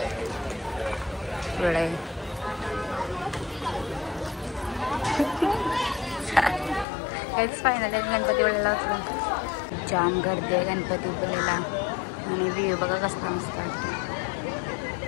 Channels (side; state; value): right; drops out; at 6.9 s